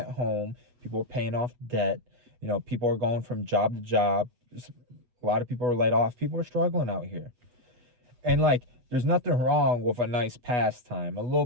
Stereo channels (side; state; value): left; late; 8.1 ms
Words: home. People are paying off debt. People are going from job to job. A lot of people are laid off. People are struggling out here. And like, there's nothing wrong with a nice pastime, a little